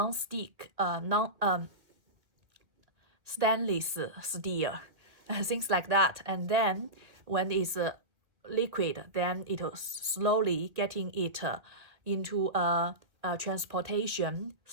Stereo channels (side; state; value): left; late; 1.8 ms